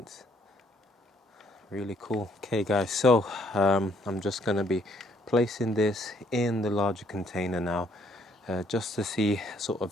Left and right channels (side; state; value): both; normal; correlation 0.67